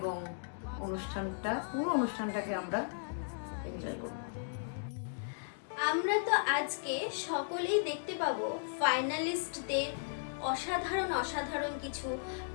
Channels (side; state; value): right; silent; digital silence